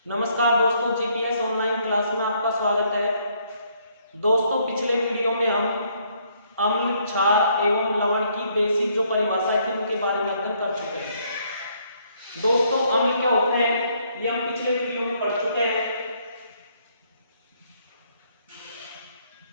नमस्कार दोस्तों, जीपीएस ऑनलाइन क्लास में आपका स्वागत है। दोस्तों, पिछले वीडियो में हम अम्ल, क्षार एवं लवण की बेसिक जो परिभाषाएं थी उनके बारे में अध्ययन कर चुके हैं। दोस्तों, अम्ल क्या होते हैं ये हम पिछले वीडियो में पढ़ चुके हैं।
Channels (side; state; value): both; inverted; correlation -0.69